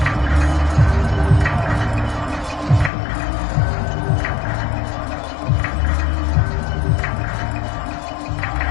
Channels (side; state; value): right; drops out; at 2.9 s